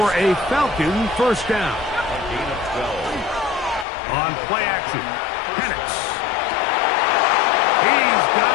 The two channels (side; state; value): right; drops out; at 3.9 s